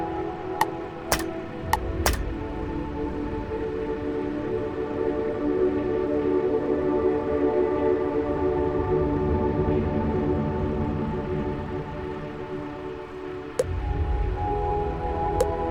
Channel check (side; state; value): both; identical; correlation 1.00